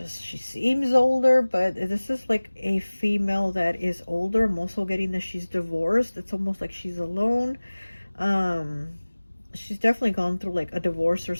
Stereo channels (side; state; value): both; inverted; correlation -1.00